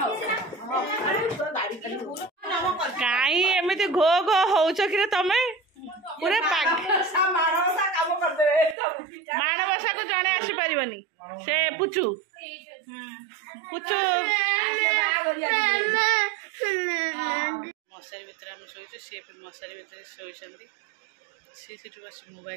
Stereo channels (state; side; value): drops out; left; at 8.8 s